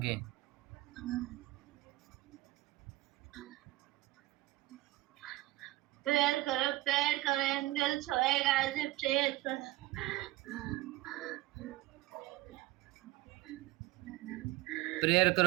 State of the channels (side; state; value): left; quieter; 18.4 dB